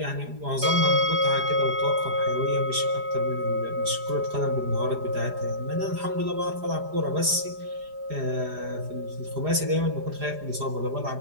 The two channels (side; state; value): left; late; 4.9 ms